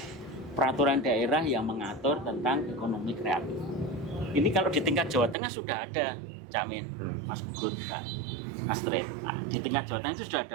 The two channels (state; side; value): drops out; left; at 5.4 s